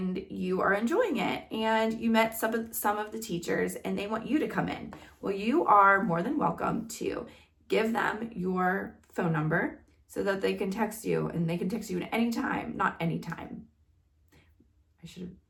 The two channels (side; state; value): both; identical; correlation 1.00